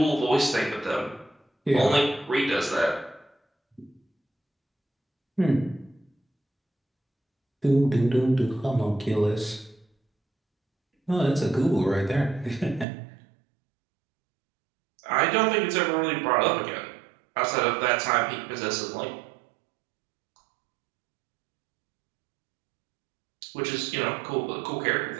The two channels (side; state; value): left; drops out; at 12.9 s